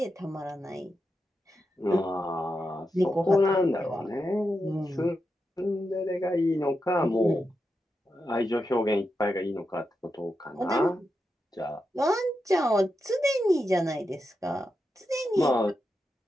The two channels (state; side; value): normal; both; correlation 0.87